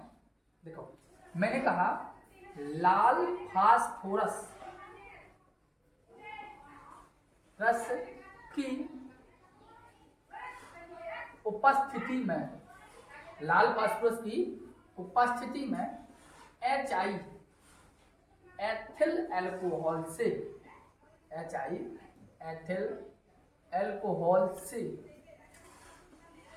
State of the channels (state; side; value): identical; both; correlation 1.00